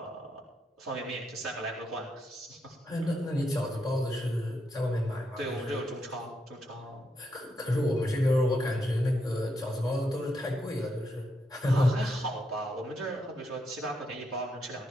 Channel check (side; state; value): both; normal; correlation 0.81